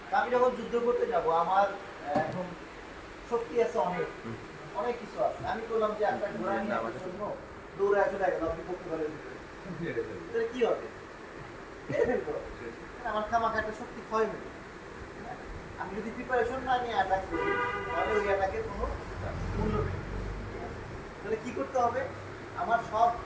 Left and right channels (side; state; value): both; identical; correlation 1.00